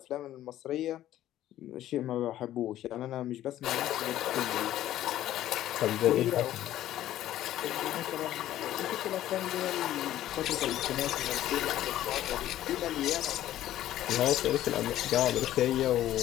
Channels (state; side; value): quieter; right; 13.1 dB